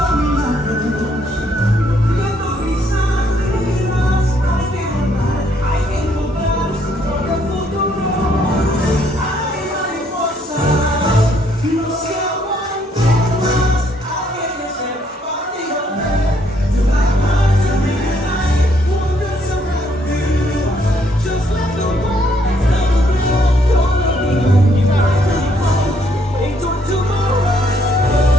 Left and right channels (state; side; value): normal; both; correlation 0.69